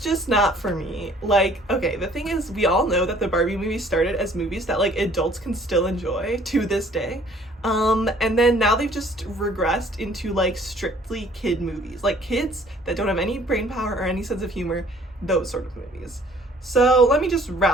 not for me. Like, okay, the thing is, we all know that the Barbie movies started as movies that like adults can still enjoy to this day. And then now they've just regressed into like strictly kid movies, like kids that don't have any brain power or any sense of humor, those sort of movies. So let me just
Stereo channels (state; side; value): normal; both; correlation 0.56